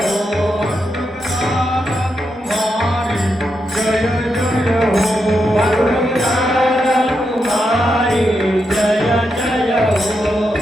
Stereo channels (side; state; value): both; normal; correlation 0.84